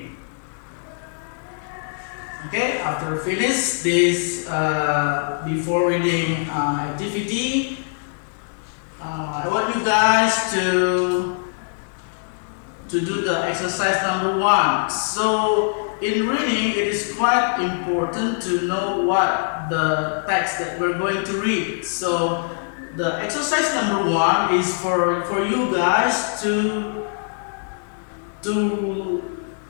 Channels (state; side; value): silent; right; digital silence